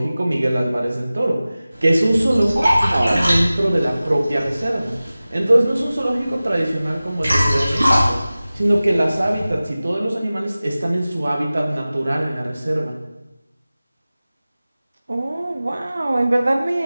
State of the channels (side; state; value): both; inverted; correlation -0.97